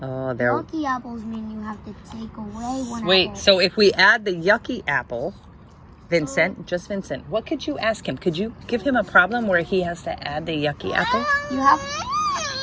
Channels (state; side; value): identical; both; correlation 1.00